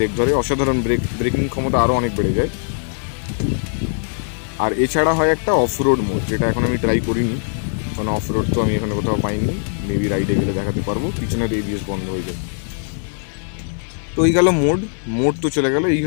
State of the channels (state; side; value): silent; right; 66 dB below the other